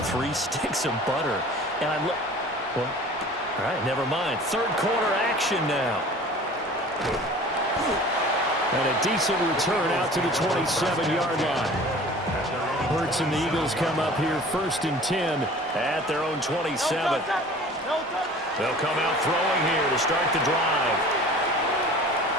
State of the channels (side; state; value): both; normal; correlation 0.44